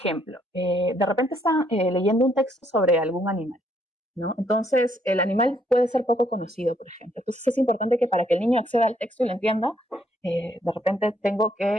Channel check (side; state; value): both; normal; correlation 0.70